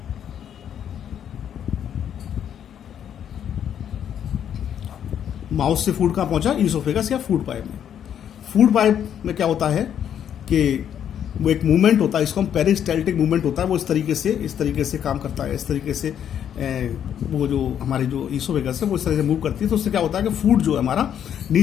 माउथ से फूड कहाँ पहुंचा? ईसोफेगस या फूड पाइप में। फूड पाइप में क्या होता है कि वो एक मूवमेंट होता है, इसको हम पेरिस्टाल्टिक मूवमेंट होता है, वो इस तरीके से काम करता है। इस तरीके से वो जो हमारी जो ईसोफेगस है वो इस तरह से मूव करती है। तो उससे क्या होता है कि फूड जो है हमारा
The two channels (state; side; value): quieter; right; 9.3 dB